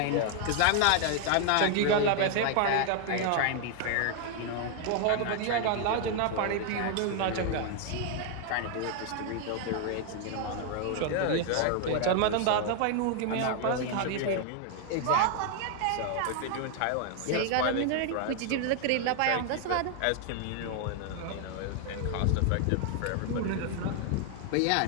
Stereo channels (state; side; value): different; both; correlation 0.00